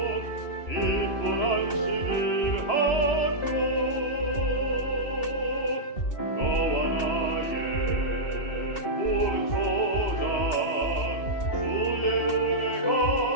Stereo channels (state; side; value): late; right; 2.7 ms